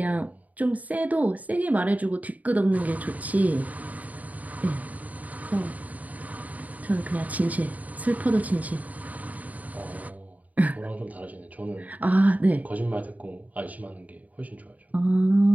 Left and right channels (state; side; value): late; left; 0.074 ms